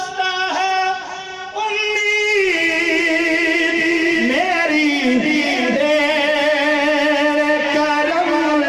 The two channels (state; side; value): identical; both; correlation 1.00